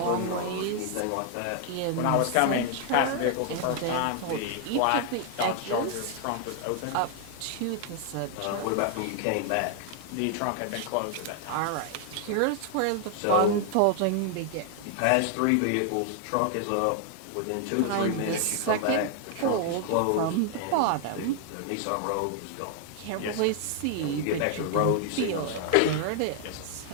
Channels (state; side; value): different; both; correlation 0.00